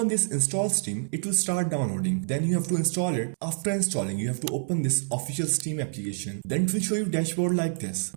this install Steam, it will start downloading. Then you have to install it. After installing, you have to open this official Steam application. Then it will show you dashboard like this.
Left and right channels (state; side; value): silent; left; 60 dB below the other